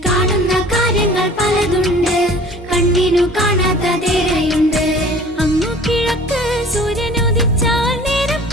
കാണുന്ന കാര്യങ്ങൾ പലതുണ്ട്, കണ്ണിനു കാണാത്തതേറെയുണ്ട്. അങ്ങു കിഴക്ക് സൂര്യനുദിച്ചാൽ നേരം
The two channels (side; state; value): both; normal; correlation 0.47